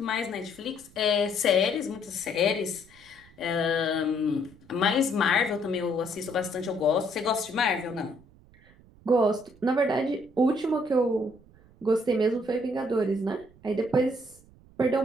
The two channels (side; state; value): right; noise; rumble, 26 dB below the sound